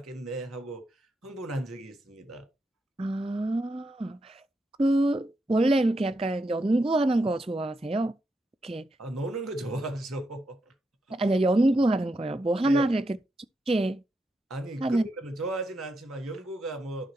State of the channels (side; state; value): both; normal; correlation 0.83